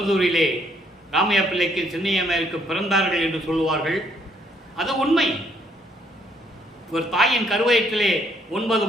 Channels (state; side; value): normal; both; correlation 0.69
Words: ராமையா பிள்ளைக்கு சின்னையம்மைக்கு பிறந்தார்கள் என்று சொல்லுவார்கள். அது உண்மை. ஒரு தாயின் கருவயிற்றிலே 9